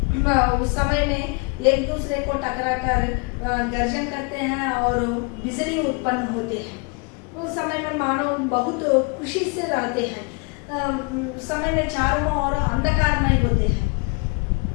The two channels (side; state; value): right; quieter; 31.3 dB